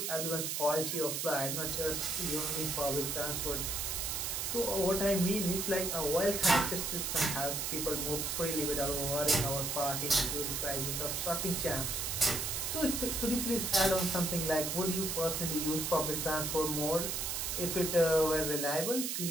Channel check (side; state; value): right; noise; hiss, 1 dB below the sound